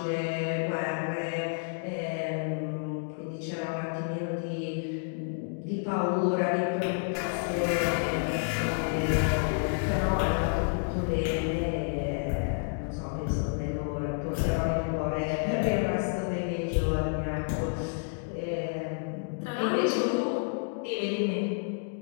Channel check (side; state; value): right; silent; digital silence